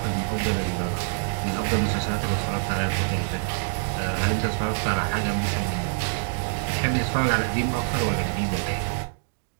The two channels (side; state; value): left; silent; digital silence